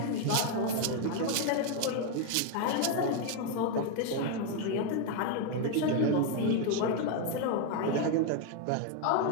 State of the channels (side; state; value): both; different; correlation 0.01